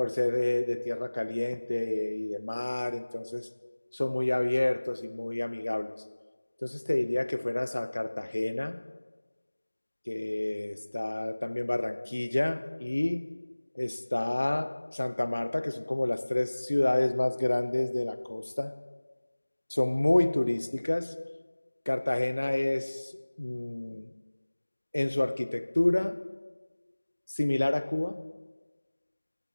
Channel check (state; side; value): inverted; both; correlation -1.00